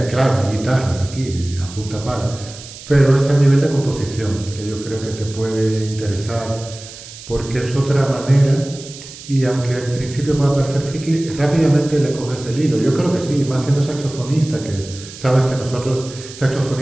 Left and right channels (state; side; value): noise; right; hiss, 15 dB below the sound